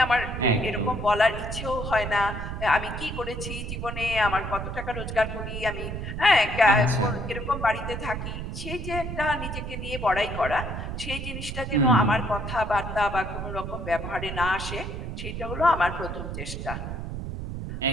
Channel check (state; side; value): noise; right; rumble, 6 dB below the sound